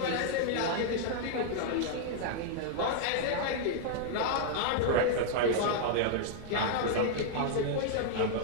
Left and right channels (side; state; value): both; different; correlation -0.01